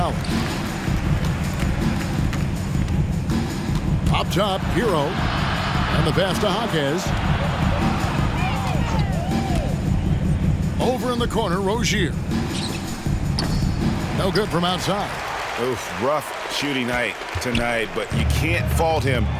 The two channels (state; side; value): identical; both; correlation 1.00